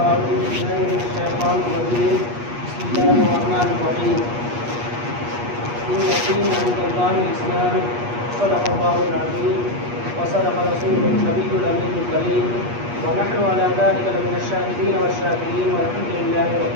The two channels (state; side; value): late; left; 8.4 ms